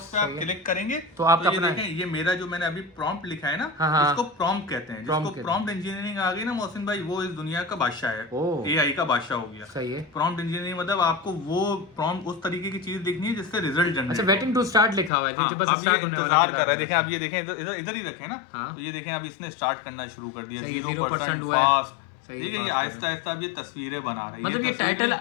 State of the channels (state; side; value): drops out; right; at 15.1 s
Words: पे आप क्लिक करेंगे तो आपका देखें, ये मेरा जो मैंने अभी प्रॉम्प्ट लिखा है ना, इसको प्रॉम्प्ट कहते हैं। जिसको प्रॉम्प्ट इंजीनियरिंग आ गई ना मोहसिन भाई, वो इस दुनिया का बादशाह है, AI का बादशाह हो गया। सही है। प्रॉम्प्ट इंजीनियरिंग मतलब आपको वो प्रॉम्प्ट उस तरीके की चीज दिखनी है जिससे रिजल्ट जनरेट। अच्छा, वेटिंग टू स्टार्ट लिखा हुआ है, जो बस स्टार्ट होने वाला है। देखें, आप ये देखें, इधर ही रखें ना। तो ये देखें, अब इसने स्टार्ट करना शुरू कर दिया। 0% फास्ट, सही ठीक है, ये fast आहिस्ता आहिस्ता अब ये तस्वीरें बना रही है। मतलब ये टाइटल